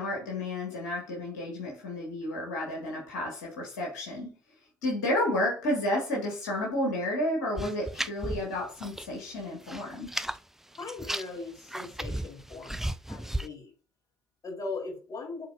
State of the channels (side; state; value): both; normal; correlation 0.48